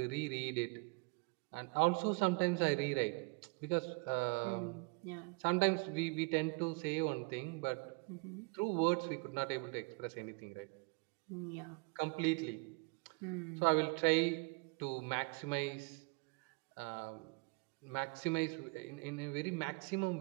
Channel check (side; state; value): left; quieter; 29.8 dB